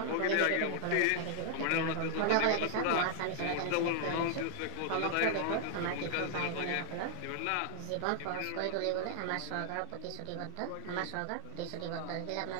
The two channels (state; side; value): different; both; correlation -0.01